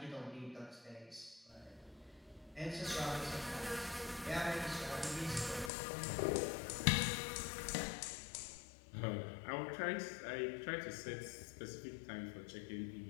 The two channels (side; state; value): right; drops out; at 5.7 s